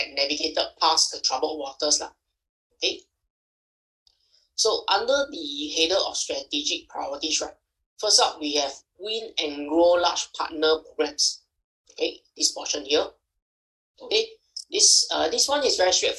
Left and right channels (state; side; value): identical; both; correlation 1.00